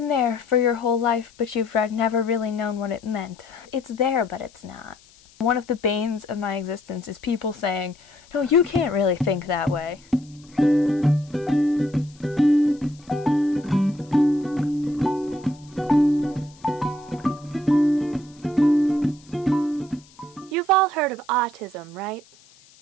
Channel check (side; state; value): left; noise; hiss, 27 dB below the sound